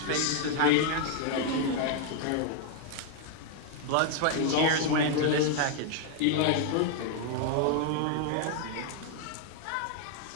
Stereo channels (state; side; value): different; both; correlation 0.00